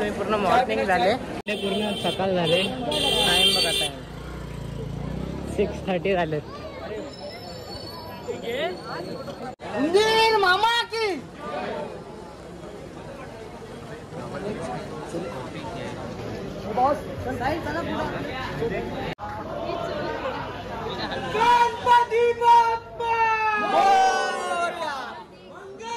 पूर्ण मॉर्निंग झाले पूर्ण सकाळ झाले. टाइम बघा टाइम 6:30 झालेत. मामा की बॉस चला गणपती बाप्पा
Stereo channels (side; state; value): both; identical; correlation 1.00